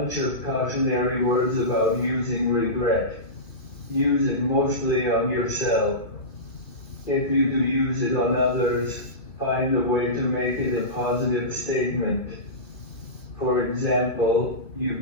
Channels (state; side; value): late; right; 2.5 ms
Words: of cautionary words about using regret. Use it mostly on yourself. If you do use it on others, find a way to make it a positive statement. For example,